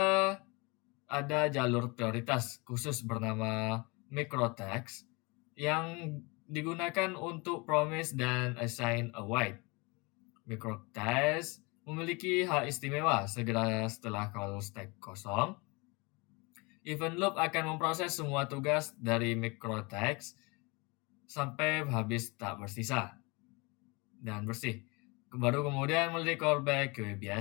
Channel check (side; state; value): right; quieter; 27.5 dB